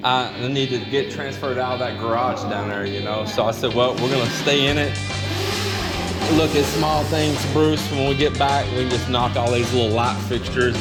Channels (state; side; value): identical; both; correlation 1.00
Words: I need to get transferred out of that garage down there, you know. So I said, well, we're gonna stay in it, look at small things, Bruce. When we get back, we can just knock all these little light fixtures